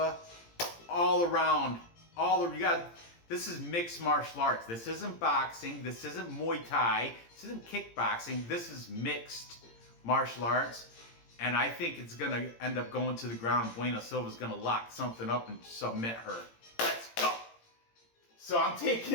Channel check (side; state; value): right; late; 18 ms